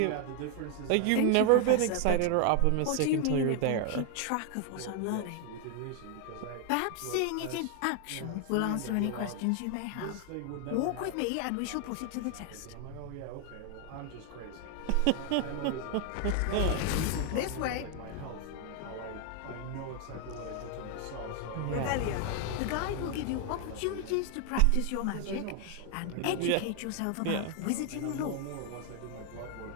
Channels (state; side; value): different; both; correlation 0.00